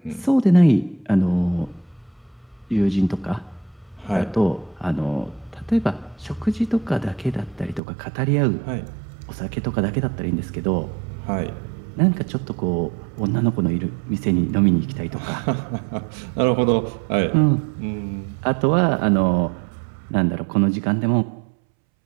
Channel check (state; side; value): drops out; left; at 7.8 s